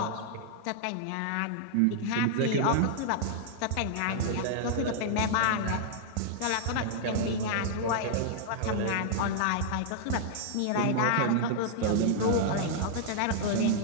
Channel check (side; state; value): both; different; correlation -0.01